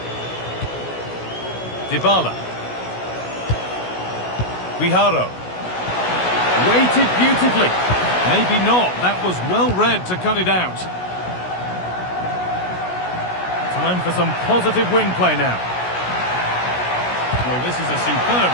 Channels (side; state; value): right; late; 16 ms